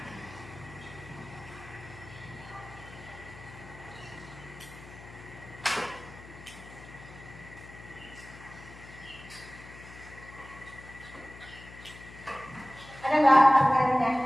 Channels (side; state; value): left; noise; hum, 17 dB below the sound